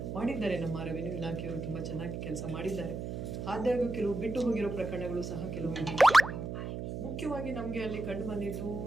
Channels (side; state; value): right; noise; hum, 5 dB below the sound